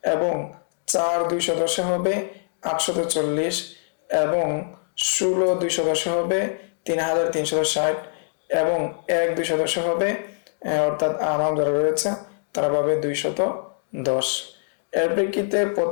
এবং 4 210-এ হবে 840 এবং 16 210-এ হবে 3360 এবং 1 210-এ হবে, অর্থাৎ আমাম যারা রয়েছে তারা পাবে 210। এর প্রেক্ষিতে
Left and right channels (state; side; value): silent; right; digital silence